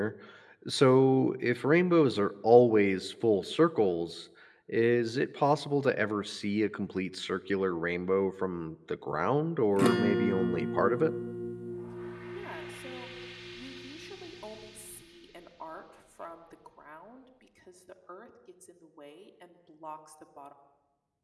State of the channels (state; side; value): identical; both; correlation 1.00